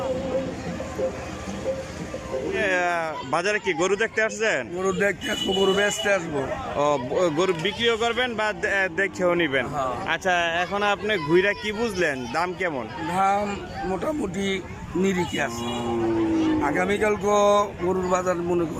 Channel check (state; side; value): identical; both; correlation 1.00